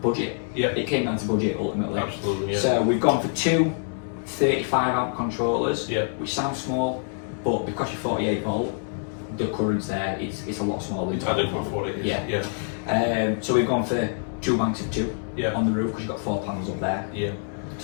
Yeah. It came down to budget ultimately. Absolutely, yeah. So we've gone for two 35 amp controllers, which sounds small, but because you're 48 volt, the current's there, it's a lot smaller. It's adequate for what it is. Yeah. So we've gone for 2 banks of 2 on the roof because you've got 4 panels up there. Yeah.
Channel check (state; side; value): silent; right; digital silence